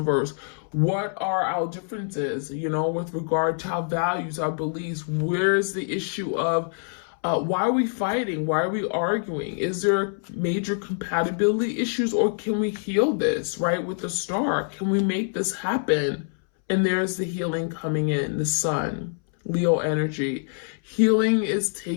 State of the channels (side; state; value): right; silent; 62 dB below the other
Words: verse. What are our differences, with regard to our values, our beliefs? Where's the issue of why are we fighting? Why are we arguing? Is there major compatibility issues, or can we heal this, right? With the Star, can we make this happen? And there's the healing coming in, the Sun, Leo energy. Healing is